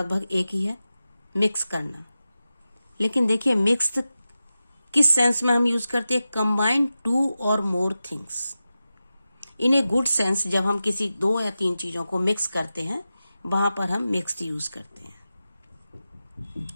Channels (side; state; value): both; inverted; correlation -0.93